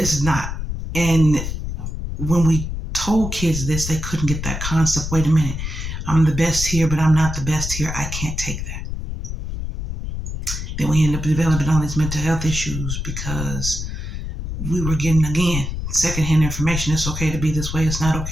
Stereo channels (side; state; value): left; noise; rumble, 5 dB below the sound